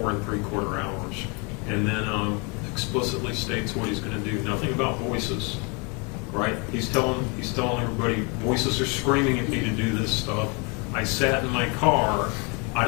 3/4 hours. And then explicitly states what he's going to do. Nothing about voices, right? He's telling everybody, voices are screaming at me to do this stuff. I sat in my car, I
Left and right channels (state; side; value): quieter; right; 32.3 dB